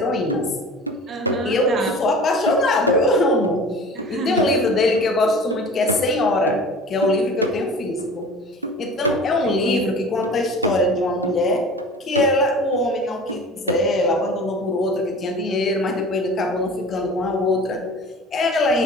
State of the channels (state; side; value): normal; both; correlation 0.40